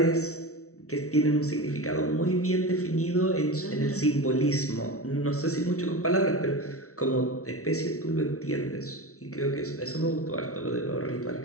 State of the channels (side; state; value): right; late; 0.64 ms